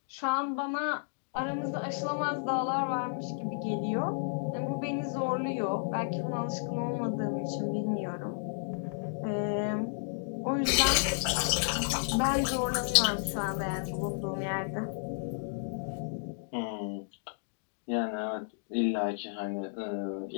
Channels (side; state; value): right; silent; digital silence